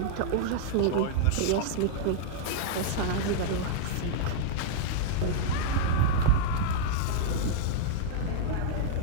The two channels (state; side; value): different; both; correlation -0.02